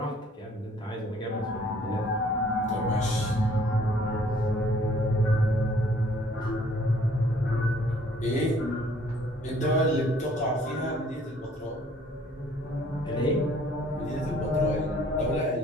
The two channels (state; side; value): normal; both; correlation 0.59